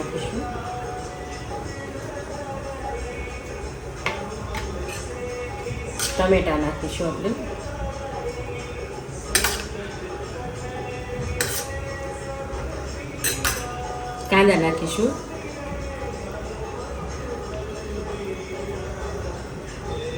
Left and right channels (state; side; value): identical; both; correlation 1.00